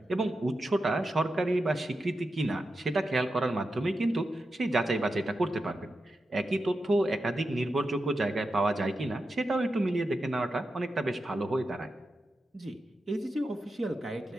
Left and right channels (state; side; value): normal; both; correlation 0.89